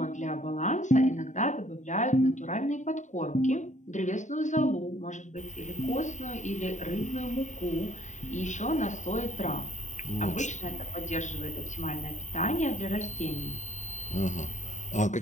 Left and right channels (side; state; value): right; late; 0.35 ms